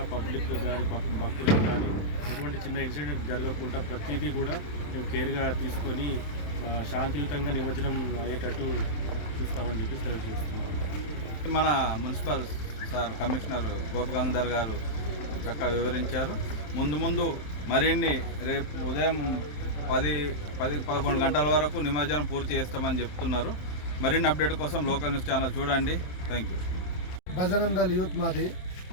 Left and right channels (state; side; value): late; right; 27 ms